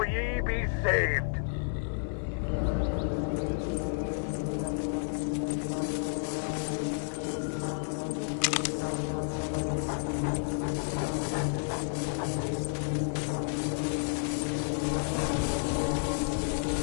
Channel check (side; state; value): right; silent; 57 dB below the other